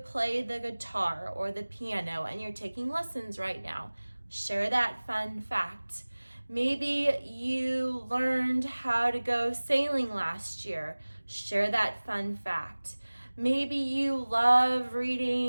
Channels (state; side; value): inverted; both; correlation -1.00